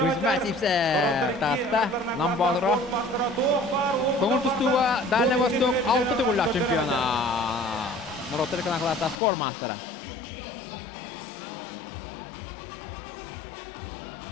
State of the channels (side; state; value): right; drops out; at 9.2 s